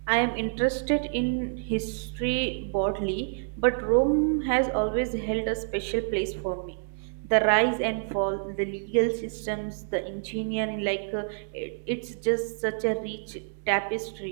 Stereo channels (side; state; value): left; silent; digital silence